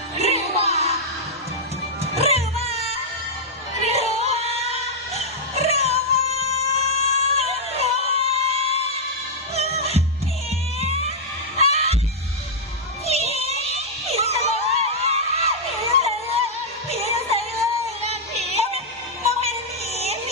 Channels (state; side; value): normal; both; correlation -0.07